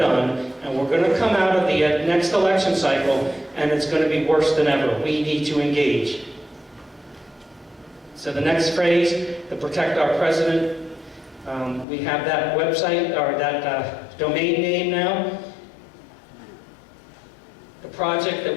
and we're going to come out of the next election cycle, and it's going to be worse than ever. We need to engage. So the next phrase, to protect our president, we have that website, or that domain name now. The project that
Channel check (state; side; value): drops out; right; at 11.9 s